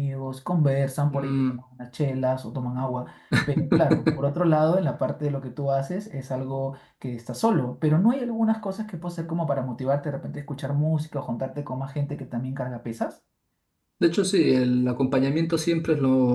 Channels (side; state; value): both; identical; correlation 1.00